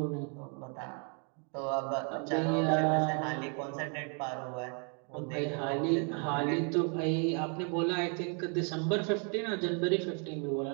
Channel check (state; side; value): quieter; left; 40.0 dB